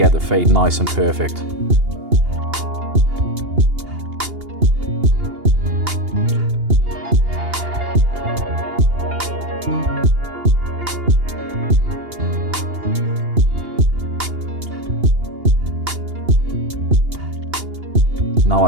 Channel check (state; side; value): late; left; 2.8 ms